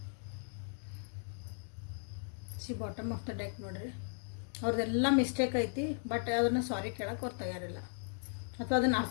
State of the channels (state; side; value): silent; right; digital silence